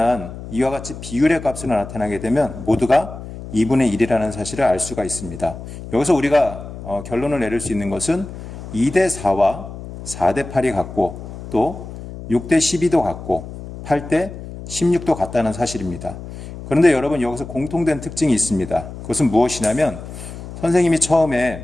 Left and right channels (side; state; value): left; noise; hum, 12 dB below the sound